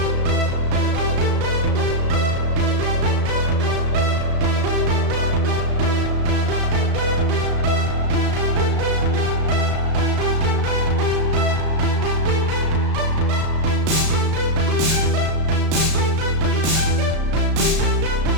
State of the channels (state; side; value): late; left; 34 ms